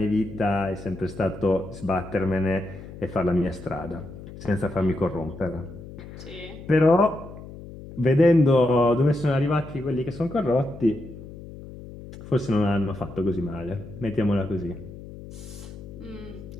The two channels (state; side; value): noise; left; hum, 14 dB below the sound